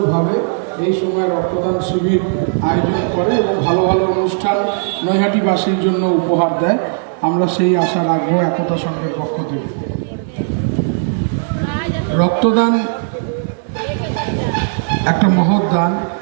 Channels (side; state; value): left; silent; digital silence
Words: এই সময় রক্তদান শিবির আয়োজন করে এবং ভালো ভালো অনুষ্ঠান নৈহাটিবাসীর জন্য উপহার দেয়, আমরা সেই আশা রাখবো একতা সংঘের পক্ষ থেকে। রক্তদান একটা মহৎ দান,